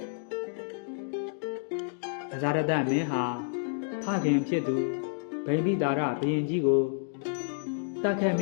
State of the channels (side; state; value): right; silent; digital silence